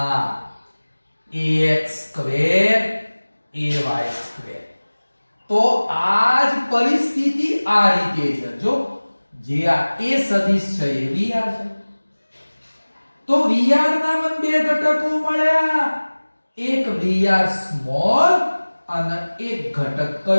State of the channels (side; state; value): both; inverted; correlation -1.00